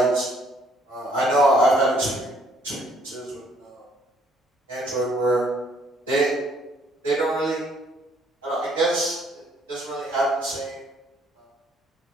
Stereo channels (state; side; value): normal; both; correlation 0.64